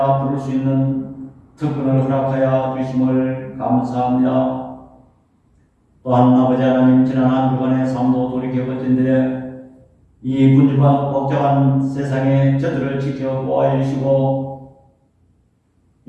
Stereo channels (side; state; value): both; identical; correlation 1.00